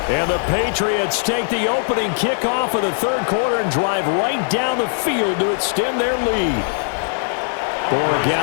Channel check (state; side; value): silent; right; digital silence